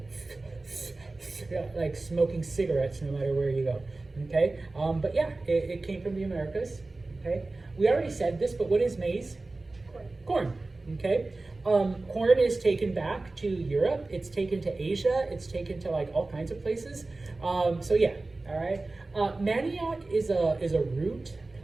like smoking cigarettes no matter where you go, okay? But yeah, it came from the Americas, okay? We already said this, but what is maize? Corn, okay? Corn is taken back to Europe. It's taken to Asia. It's taken to like all kinds of places. So yeah, all right. Manioc is a root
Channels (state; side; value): quieter; left; 3.2 dB